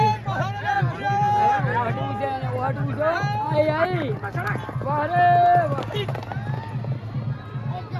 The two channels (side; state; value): both; identical; correlation 1.00